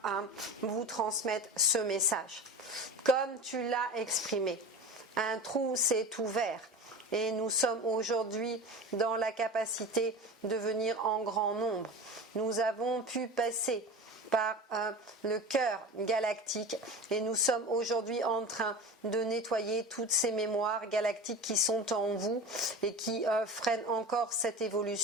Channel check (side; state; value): both; normal; correlation 0.31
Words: vous transmettre ce message. Comme tu l'as exprimé, un trou s'est ouvert et nous sommes aujourd'hui dans la capacité de venir en grand nombre. Nous avons pu passer par le cœur galactique et nous sommes aujourd'hui en train de nettoyer toutes ces mémoires galactiques qui sont en vous et qui freinent encore cette